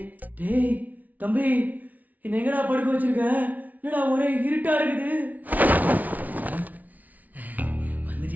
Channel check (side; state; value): left; late; 0.075 ms